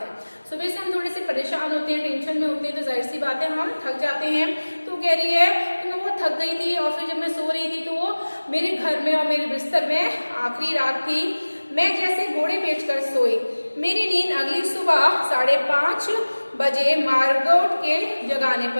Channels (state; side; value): inverted; both; correlation -1.00